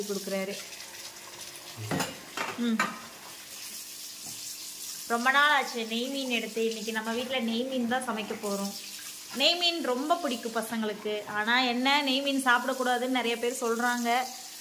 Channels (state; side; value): identical; both; correlation 1.00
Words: கொடுக்குறாரு. ரொம்ப நாள் ஆச்சு நெய் மீன் எடுத்து. இன்னைக்கு நம்ம வீட்டில் நெய் மீன் தான் சமைக்க போகிறோம். நெய் மீன் ரொம்ப பிடிக்கும் பசங்களுக்கு. ஆனால் என்ன, நெய் மீன் சாப்பிடக்கூடாதுன்னு நிறைய பேர் சொல்கிறாங்க,